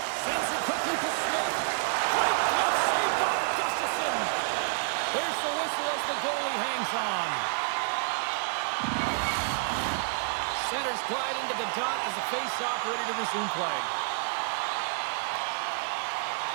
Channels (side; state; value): left; silent; digital silence